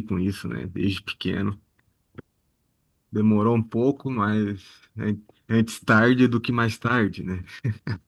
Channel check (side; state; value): both; identical; correlation 1.00